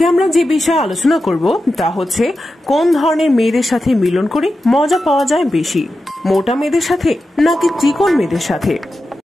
আমরা যে বিষয়ে আলোচনা করব তা হচ্ছে কোন ধরনের মেয়েদের সাথে মিলন করে মজা পাওয়া যায় বেশি, মোটা মেয়েদের সাথে নাকি চিকন মেয়েদের সাথে।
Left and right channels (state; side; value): normal; both; correlation 0.91